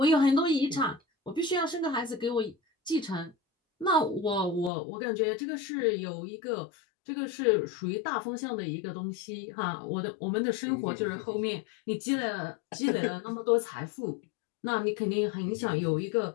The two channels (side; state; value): right; drops out; at 4.7 s